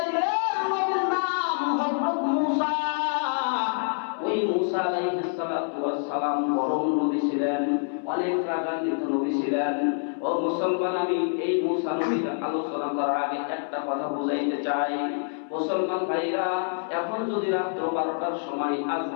নবীর নাম হযরত মুসা। ওই মুসা আলাইহিস সালাতু ওয়াস সালাম বড় নবী ছিলেন, অনেক রাগান্বিত নবী ছিলেন। ও মুসলমান, আমি এই মুসা নবীর আলোচনা করার আগে একটা কথা বুঝাইতে চাই। মুসলমান ভাইরা, এখন যদি রাত্র 12টার সময়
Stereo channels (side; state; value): right; silent; 61 dB below the other